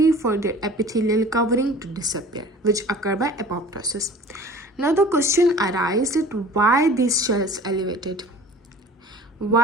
for their epithelial covering to disappear, which occur by apoptosis. Now the question arises that why these shells elevated?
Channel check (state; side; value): normal; both; correlation 0.44